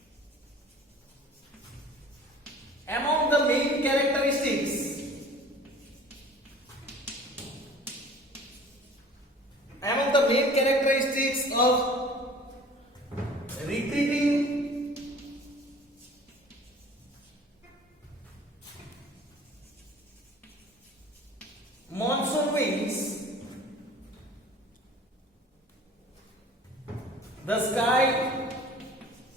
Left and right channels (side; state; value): both; normal; correlation 0.47